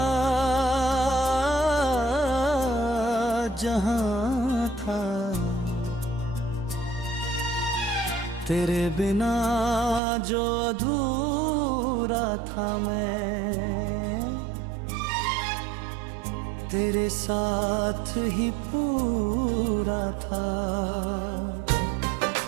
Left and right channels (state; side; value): drops out; left; at 10.0 s